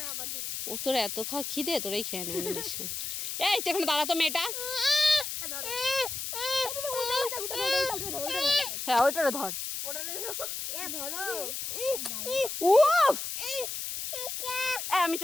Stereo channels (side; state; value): left; noise; hiss, 5 dB below the sound